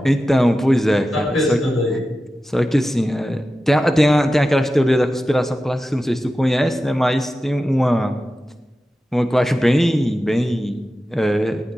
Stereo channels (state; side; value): normal; both; correlation 0.93